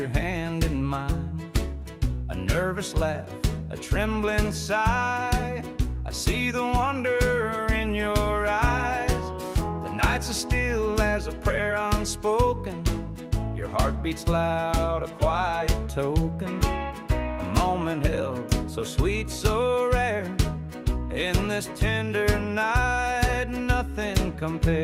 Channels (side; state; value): both; identical; correlation 1.00